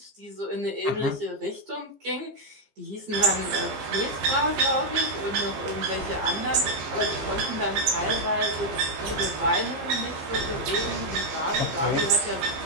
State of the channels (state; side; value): late; left; 15 ms